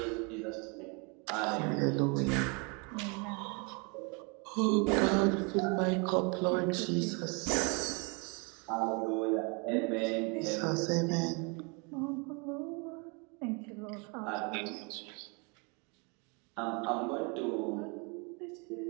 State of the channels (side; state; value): left; quieter; 32.0 dB